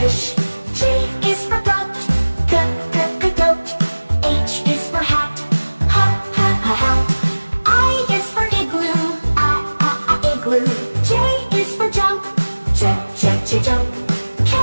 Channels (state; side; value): inverted; both; correlation -1.00